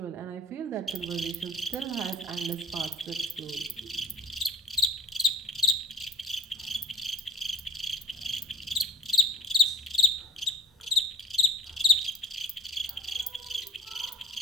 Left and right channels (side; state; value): both; normal; correlation 0.42